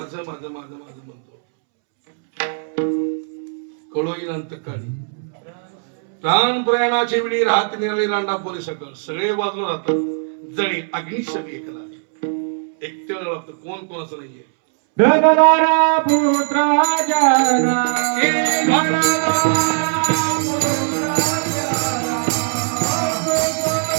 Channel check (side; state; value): left; silent; 66 dB below the other